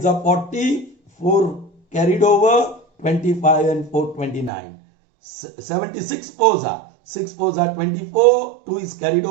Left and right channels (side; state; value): left; drops out; at 4.5 s